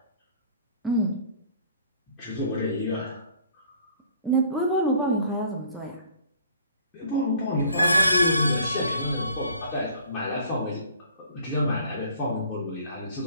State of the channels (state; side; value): inverted; both; correlation -0.53